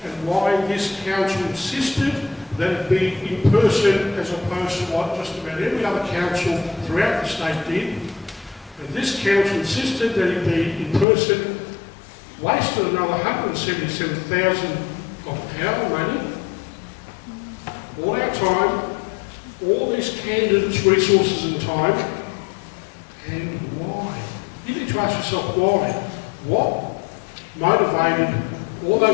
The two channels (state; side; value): drops out; right; at 11.1 s